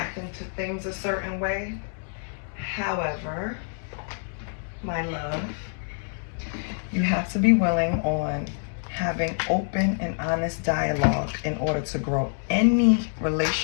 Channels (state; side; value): silent; right; 60 dB below the other